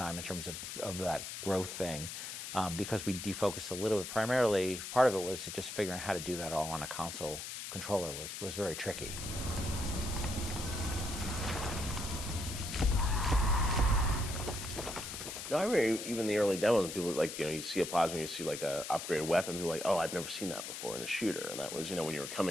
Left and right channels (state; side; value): noise; left; hiss, 7 dB below the sound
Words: in terms of that growth thing, because we defocused a little bit. Primarily, part of it was just figuring out how to do that all on a console controller was very tricky. No, I remember even the early demos, people like, you see a plasma, you see like a upgraded weapon, people are like, oh, I've never seen that before in a shooter. And that was, when you were